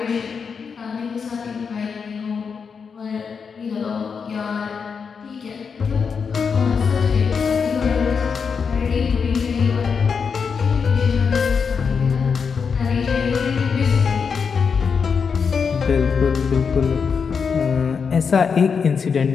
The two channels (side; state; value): right; quieter; 5.9 dB